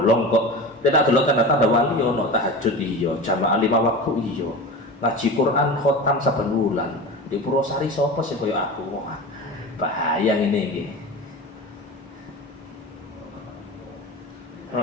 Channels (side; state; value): both; normal; correlation 0.30